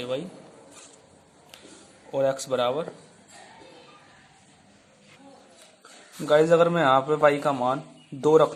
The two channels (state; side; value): identical; both; correlation 1.00